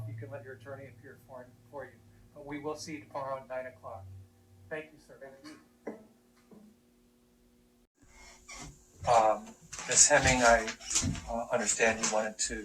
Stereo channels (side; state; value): both; identical; correlation 1.00